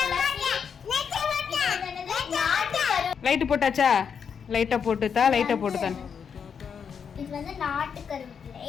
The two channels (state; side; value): quieter; right; 6.9 dB